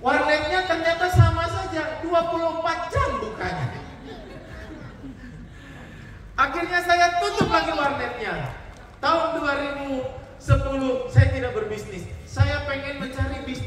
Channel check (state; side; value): identical; both; correlation 1.00